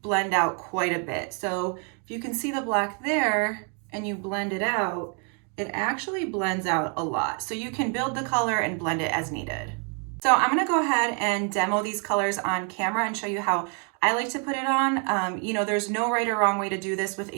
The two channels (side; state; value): left; quieter; 39.3 dB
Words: blend out quite a bit. So if you can see the black there and you blend it out, it actually blends out a lot. So you can build the color and blend it as needed. So I'm gonna go ahead and demo these colors on camera and show you how I like to put it on. You know, there's no right or wrong way to do this with